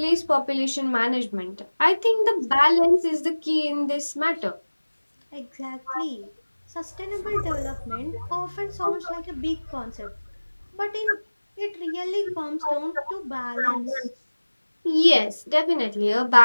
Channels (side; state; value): both; inverted; correlation -1.00